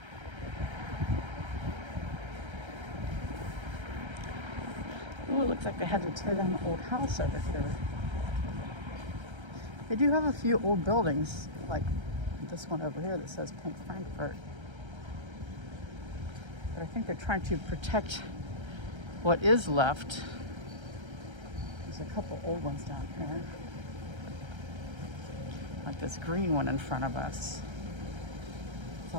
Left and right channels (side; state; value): left; late; 1.3 ms